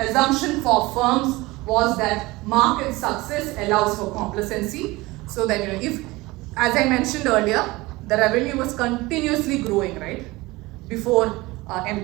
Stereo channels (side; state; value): left; quieter; 21.2 dB